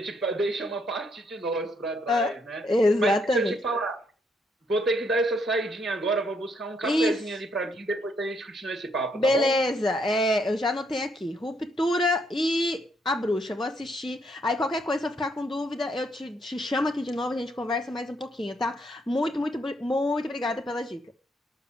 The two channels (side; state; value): both; normal; correlation 0.73